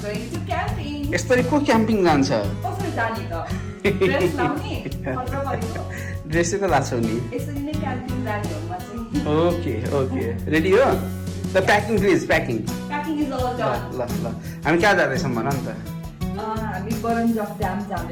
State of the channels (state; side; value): identical; both; correlation 1.00